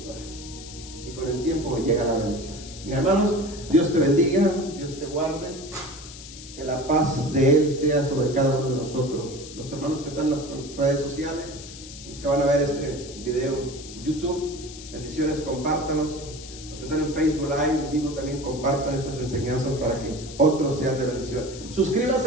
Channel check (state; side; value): noise; left; hiss, 14 dB below the sound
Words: Y con el tiempo llega la bendición. Mis hermanos, Dios te bendiga, Dios te guarde. Que la paz de Él sea sobre cada uno de nosotros. Los hermanos que están en las redes sociales, los que van a ver este video en YouTube, bendiciones, compártanos. Los que están en Facebook Live, en vivo, también compartan estas enseñanzas para que otros sean de bendición.